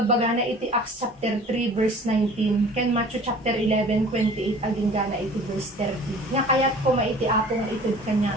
na iti Acts chapter 3 verse 19, ken Matthew chapter 11, 28, aging gana iti verse 30. Nga kaya't ko maiti apo nga itid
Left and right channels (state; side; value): normal; both; correlation 0.47